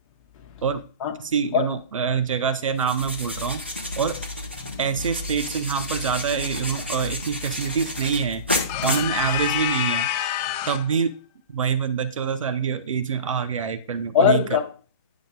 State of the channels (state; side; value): inverted; both; correlation -0.31